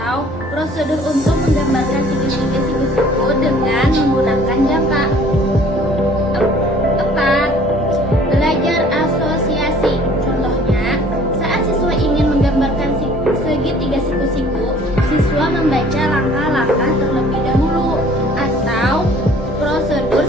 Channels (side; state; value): both; normal; correlation 0.54